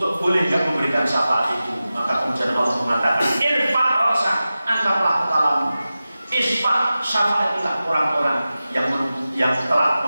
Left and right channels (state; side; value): inverted; both; correlation -0.95